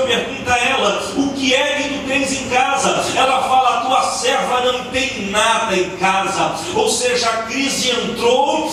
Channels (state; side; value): identical; both; correlation 1.00